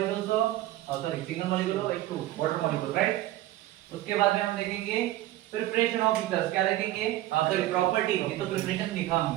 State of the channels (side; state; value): left; quieter; 15.2 dB